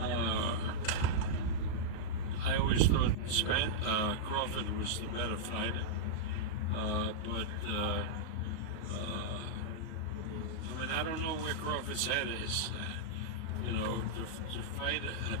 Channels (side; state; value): right; late; 38 ms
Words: I always thought Crawford was the better fighter, but I don't know where Crawford's head is. To fight